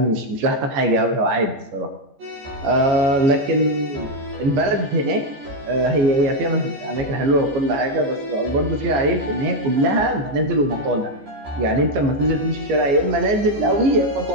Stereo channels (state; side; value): late; left; 15 ms